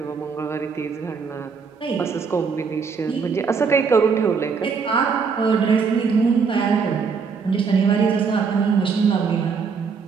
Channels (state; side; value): quieter; left; 5.6 dB